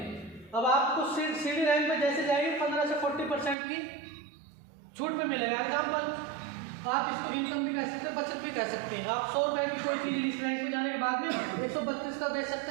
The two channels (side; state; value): left; drops out; at 3.6 s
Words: अब आपको सीडी रैंक पे जैसे जाएंगे 15 से 40% की छूट पे मिलेगा। एग्जाम्पल, आप इसको इनकम भी कह सकते हैं, बचत भी कह सकते हैं। आप 100 रुपए की कोई चीज़ इस रैंक पे जाने के बाद में 132 का बेच सकते